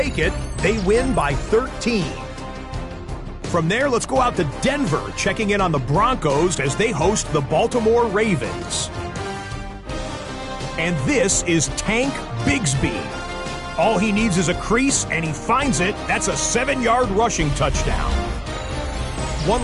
it. They win by 13. From there, let's go out to Denver, checking in on the Broncos as they host the Baltimore Ravens. And this is Tank Bigsby. All he needs is a crease, and he finds it. That's a 7-yard rushing touchdown. One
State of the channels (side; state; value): both; identical; correlation 1.00